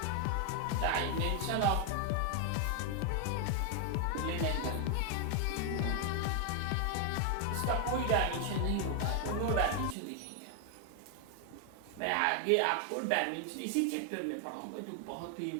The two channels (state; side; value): different; both; correlation 0.00